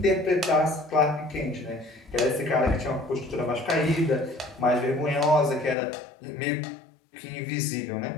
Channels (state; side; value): drops out; right; at 5.8 s